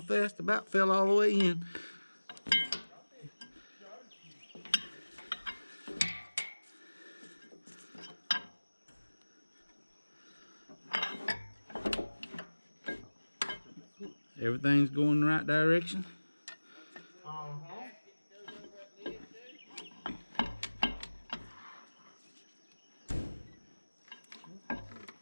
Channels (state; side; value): inverted; both; correlation -1.00